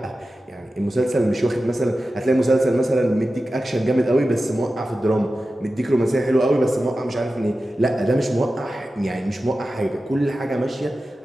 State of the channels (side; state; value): both; normal; correlation 0.93